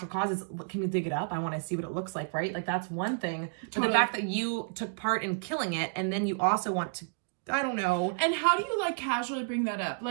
causes, can you dig it up? I want to see what it looks like, right? Like that's one thing. Totally. But the fact that you took part in killing it, and then you also want to, I don't know. And how do you like casually bring that up?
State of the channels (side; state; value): left; silent; digital silence